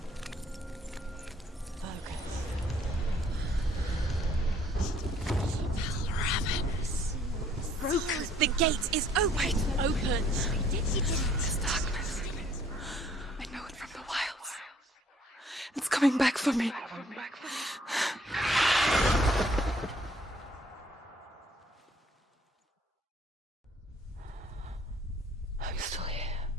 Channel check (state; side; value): normal; both; correlation 0.61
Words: The gate is open. Open. This darkness. I know it from the wilds. It's coming back for me. I'm still here.